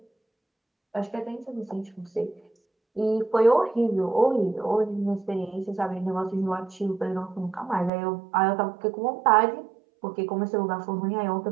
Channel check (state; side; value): drops out; left; at 7.9 s